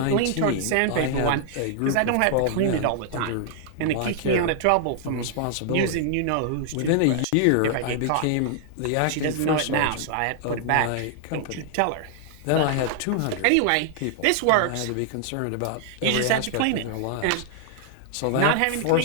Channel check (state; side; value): different; both; correlation -0.01